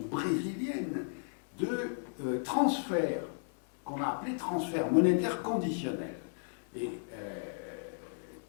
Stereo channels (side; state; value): right; silent; 55 dB below the other